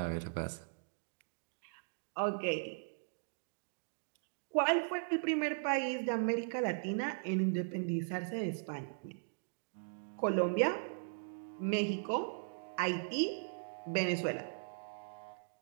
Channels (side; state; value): left; silent; digital silence